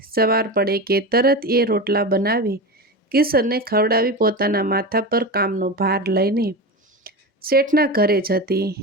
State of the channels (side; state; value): both; normal; correlation 0.23